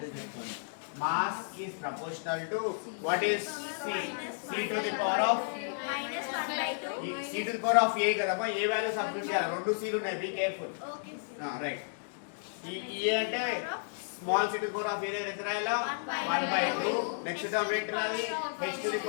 mass is proportional to what is c? c to the power of -1/2. c to the power of a కదమ్మా. ఏ వాల్యూ సబ్స్టిట్యూట్ చేయాలి? రెండు c లు ఉన్నాయి, బి కేర్ఫుల్. రైట్. ఈ అంటే small c to the power of a దగ్గర ఎంత రాయాలా? 1/2. Next term ఏంటి రాది? h to the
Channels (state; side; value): silent; right; digital silence